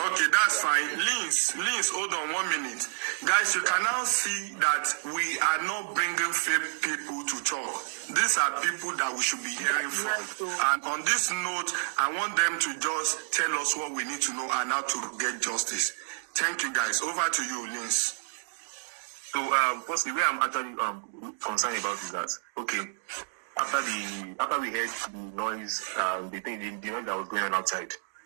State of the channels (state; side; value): silent; left; digital silence